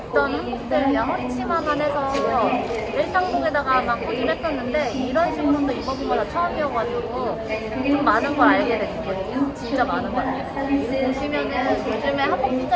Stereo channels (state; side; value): identical; both; correlation 1.00